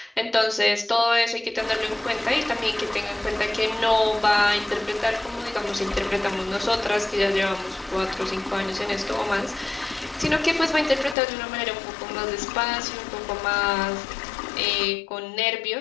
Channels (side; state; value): right; drops out; at 11.2 s